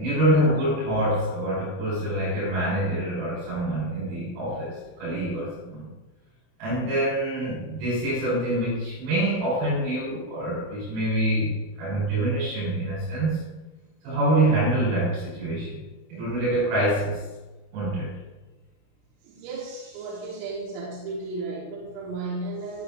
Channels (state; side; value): late; left; 33 ms